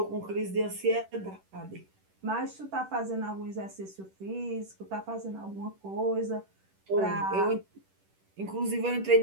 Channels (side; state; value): left; late; 10 ms